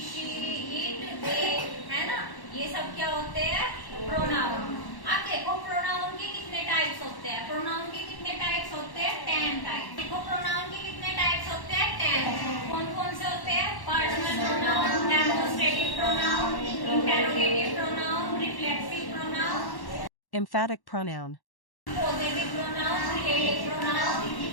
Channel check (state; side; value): late; right; 1.1 ms